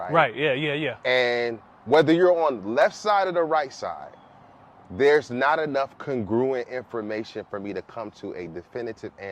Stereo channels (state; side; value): identical; both; correlation 1.00